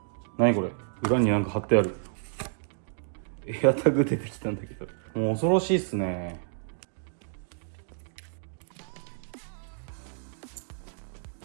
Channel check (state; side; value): silent; left; digital silence